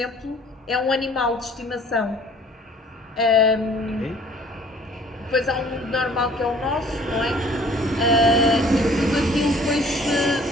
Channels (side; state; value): both; normal; correlation 0.54